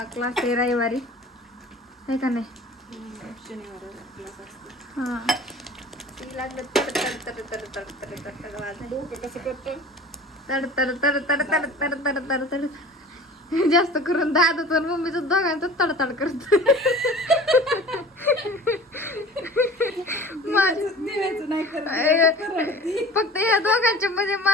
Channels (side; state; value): both; normal; correlation 0.42